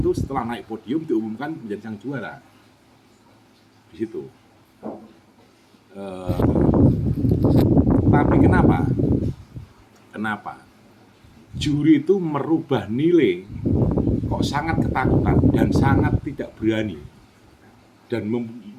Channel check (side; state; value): both; identical; correlation 1.00